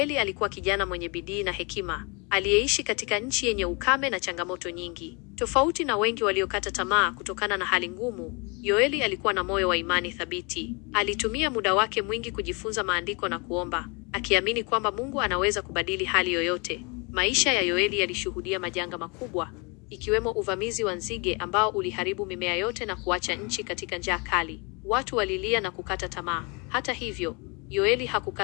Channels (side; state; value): right; quieter; 30.8 dB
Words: alikuwa kijana mwenye bidii na hekima, aliyeishi katika nchi yenye ukame na changamoto nyingi. Tofauti na wengi waliokata tamaa kutokana na hali ngumu, Yoeli alikuwa na moyo wa imani thabiti. Alitumia muda wake mwingi kujifunza maandiko na kuomba, akiamini kwamba Mungu anaweza kubadili hali yoyote. Maisha ya Yoeli yalishuhudia majanga makubwa, ikiwemo uvamizi wa nzige ambao uliharibu mimea yote na kuacha nchi katika njaa kali. Watu walilia na kukata tamaa. Hata hivyo, Yoeli